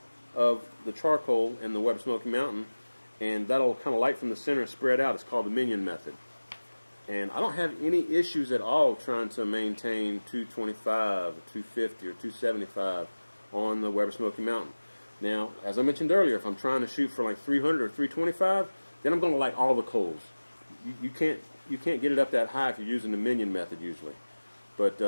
of the charcoal in the Weber Smoky Mountain, and that'll kind of light from the center and spread out. It's called the minion method. And I don't have any issues at all trying to maintain 225 or 250 or 275 on the Weber Smoky Mountain. Now, as I mentioned earlier, if I'm trying to shoot for like 300 or 325, then I'm going to light all the coals. You can't get it up that high if you're using the minion method usually. But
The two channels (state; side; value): inverted; both; correlation -1.00